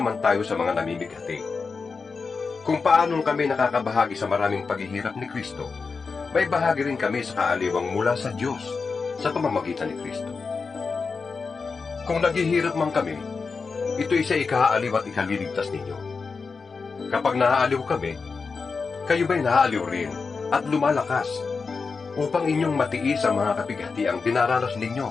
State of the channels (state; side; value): quieter; right; 4.8 dB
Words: tayo sa mga namimighati. Kung paanong kami nakakabahagi sa maraming paghihirap ni Kristo, may bahagi rin kami sa kaaliwang mula sa Diyos sa pamamagitan ni Kristo. Kung naghihirap man kami, ito'y sa ikaaliw at ikaliligtas ninyo. Kapag naaaliw kami, kayo ba'y naaaliw rin at lumalakas upang inyong matiis ang mga kapighatiang dinaranas